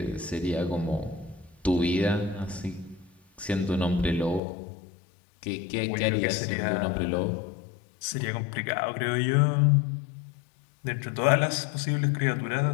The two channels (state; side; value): drops out; right; at 4.4 s